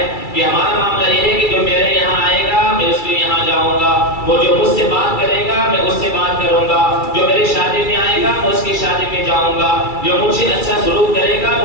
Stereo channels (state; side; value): late; right; 2.3 ms